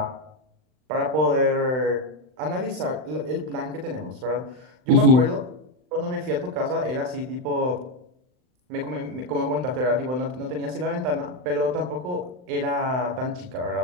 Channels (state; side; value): late; left; 39 ms